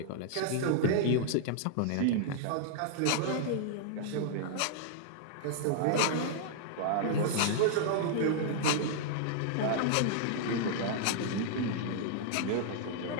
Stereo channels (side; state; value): both; different; correlation -0.01